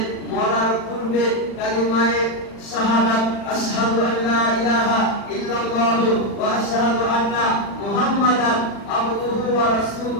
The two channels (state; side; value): late; right; 40 ms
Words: মরার পূর্বে কালিমায়ে শাহাদাত আশহাদু আল্লা ইলাহা ইল্লাল্লাহ ওয়া আশহাদু আন্না মুহাম্মাদান আবদুহু ওয়া